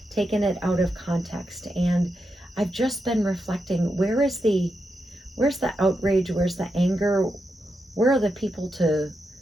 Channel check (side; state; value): both; normal; correlation 0.86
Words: taken it out of context? And I've just been reflecting, where's the outrage? Where's the anger? Where are the people to